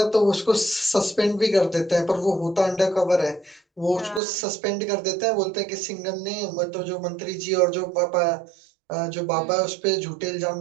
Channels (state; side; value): drops out; left; at 4.2 s